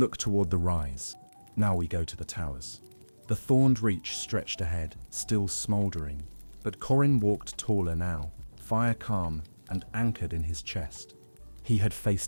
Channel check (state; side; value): inverted; both; correlation -1.00